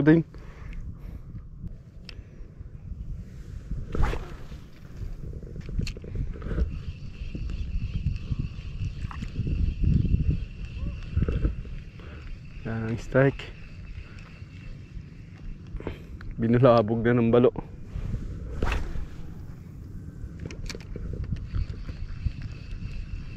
yun. Wala nang strike. Binulabog na ng balo.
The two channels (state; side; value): identical; both; correlation 1.00